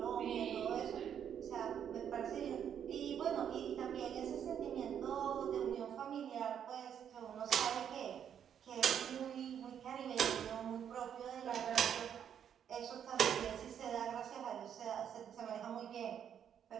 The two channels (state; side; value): quieter; left; 8.8 dB